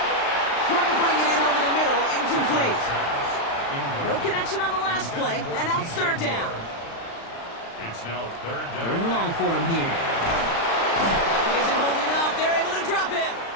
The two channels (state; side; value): late; right; 35 ms